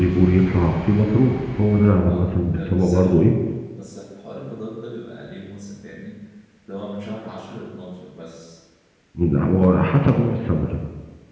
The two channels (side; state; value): both; identical; correlation 1.00